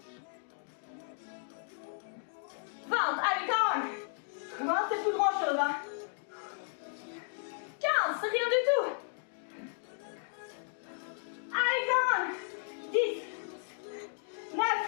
20. Allez, come on. 20, c'est plus grand chose. Hein. 15, c'est rien du tout. Allez, come on. 10. 9.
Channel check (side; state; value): right; silent; 55 dB below the other